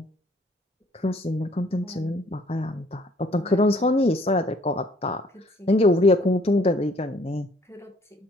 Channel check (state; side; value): normal; both; correlation 0.60